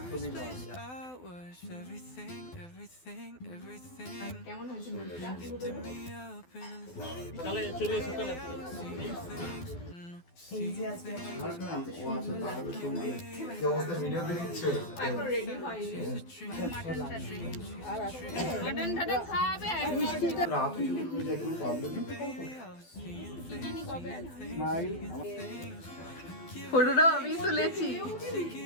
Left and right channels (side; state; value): right; late; 12 ms